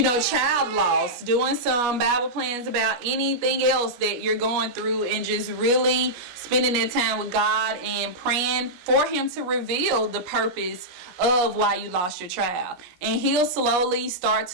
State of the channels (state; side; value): late; left; 17 ms